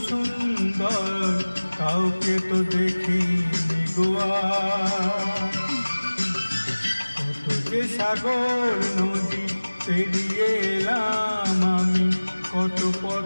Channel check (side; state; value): both; inverted; correlation -1.00